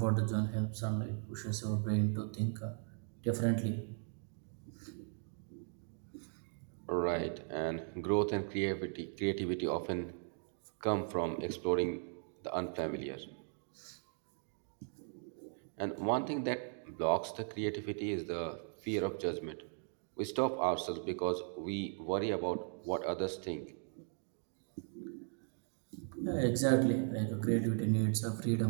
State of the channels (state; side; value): silent; left; 52 dB below the other